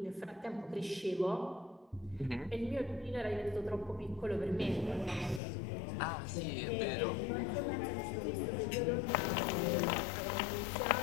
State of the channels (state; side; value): drops out; right; at 5.4 s